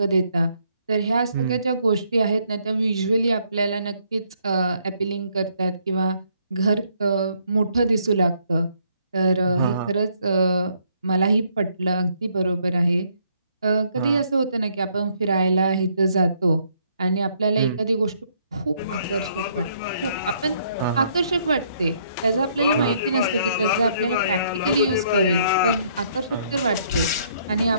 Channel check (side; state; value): both; inverted; correlation -0.69